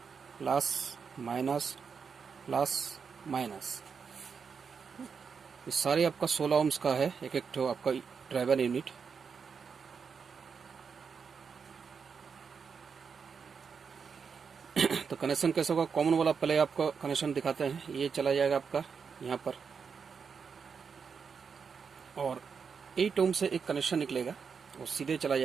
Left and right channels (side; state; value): left; quieter; 6.0 dB